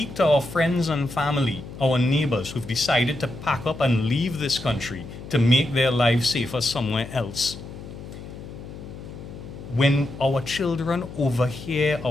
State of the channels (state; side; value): noise; left; hum, 13 dB below the sound